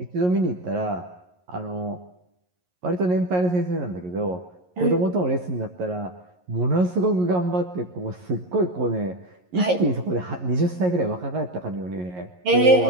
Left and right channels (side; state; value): left; late; 11 ms